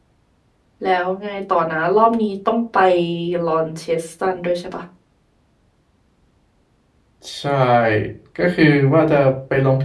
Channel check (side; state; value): both; identical; correlation 1.00